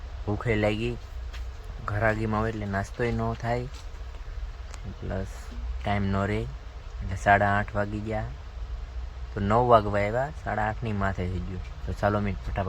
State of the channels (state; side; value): identical; both; correlation 1.00